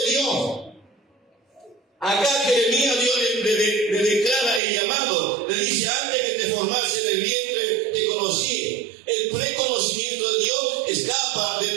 Dios. Acá Jeremías, Dios le declara el llamado, le dice, antes que te formase en el vientre te conocí. El preconocimiento de Dios escapa de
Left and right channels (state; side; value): drops out; left; at 4.6 s